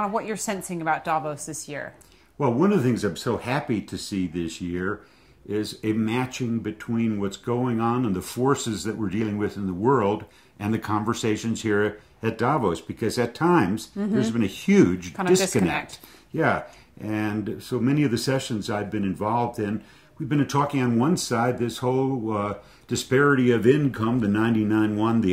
sensing about Davos this year. Well, one of the things I'm so happy to see this year is a matching between what's going on and the forces that we're dealing with in the world and the conversations here at Davos, because at times there's been a huge disconnect. Yeah, and so many of the sessions I've been involved in, we've been talking on one side, this whole disparity of income, the 99-1,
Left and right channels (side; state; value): both; identical; correlation 1.00